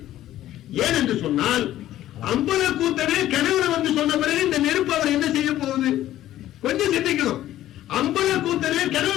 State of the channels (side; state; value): right; quieter; 13.5 dB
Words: ஏன் என்று சொன்னால், அம்பல கூத்தனே கனவுல வந்து சொன்ன பிறகு இந்த நெருப்பு அவர் என்ன செய்ய போகுது? கொஞ்சம் சிந்திக்கணும். அம்பல கூத்தனே